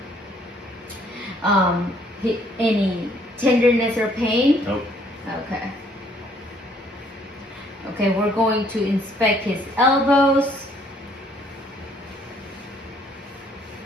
any tenderness or pain. Nope. Okay. Okay, we're going to inspect his elbows.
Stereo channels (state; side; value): normal; both; correlation 0.64